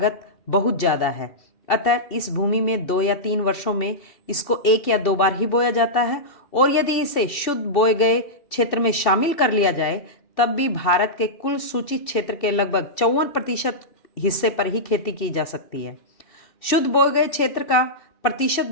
बहुत ज़्यादा है। अतः इस भूमि में 2 या 3 वर्षों में इसको 1 या 2 बार ही बोया जाता है और यदि इसे शुद्ध बोए गए क्षेत्र में शामिल कर लिया जाए तब भी भारत के कुल सूचित क्षेत्र के लगभग 54% हिस्से पर ही खेती की जा सकती है। शुद्ध बोए गए क्षेत्र का प्रतिशत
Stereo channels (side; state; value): right; late; 2.7 ms